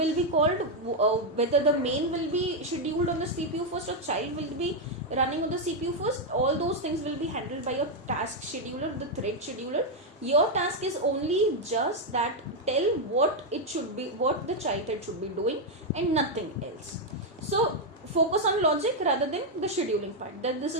be called, whether the main will be scheduled on the CPU first or child will be running on the CPU first. All those things will be handled by your task scheduler, the thread scheduler. Your task is only just that, tell what it should be, what the child thread should be doing, and nothing else. So focus on logic rather than the scheduling part. That this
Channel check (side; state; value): both; normal; correlation 0.01